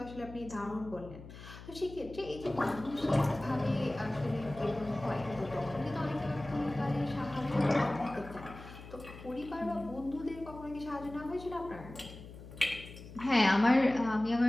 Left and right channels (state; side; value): noise; left; hum, 15 dB below the sound